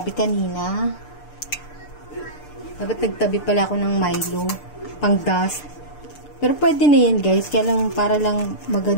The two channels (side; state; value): right; late; 6.7 ms